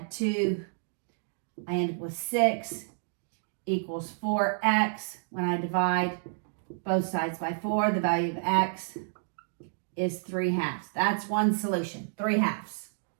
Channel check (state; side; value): silent; left; digital silence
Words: 2. I end up with 6 equals 4x. When I divide both sides by 4, the value of x is 3/2. That's one solution, 3/2.